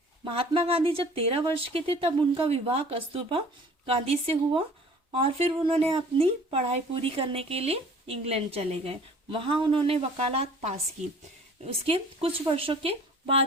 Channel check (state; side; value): normal; both; correlation 0.49